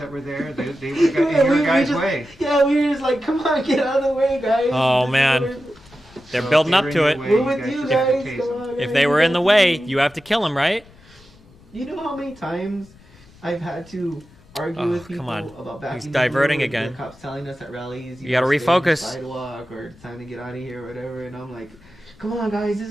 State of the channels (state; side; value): noise; left; rumble, 26 dB below the sound